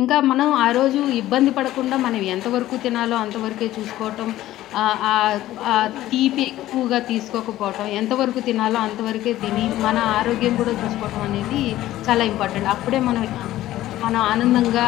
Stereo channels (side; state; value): right; quieter; 14.7 dB